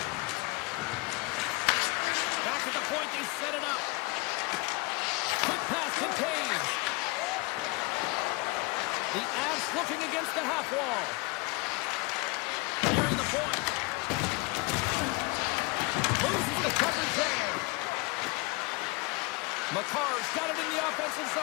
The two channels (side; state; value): right; quieter; 26.4 dB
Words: Back at the point, they set it up. Quick pass to Taves. The Avs looking against the half wall. Nearing the point. Loses the coverage there. McCarr's got it in the offensive